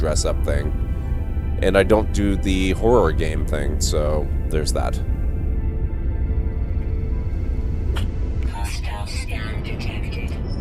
thing, and I don't do the horror game thing, so there's that. Hostile scan detected.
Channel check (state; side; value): identical; both; correlation 1.00